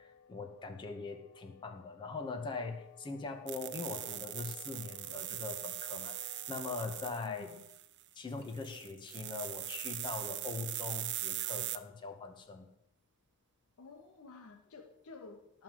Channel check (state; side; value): normal; both; correlation 0.18